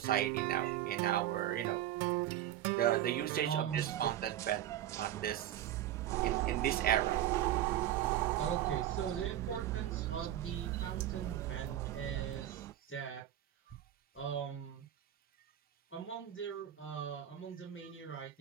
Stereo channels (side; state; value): left; quieter; 12.2 dB